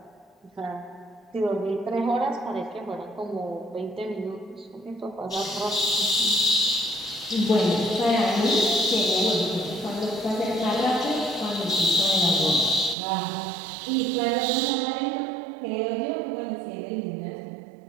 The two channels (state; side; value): drops out; left; at 13.0 s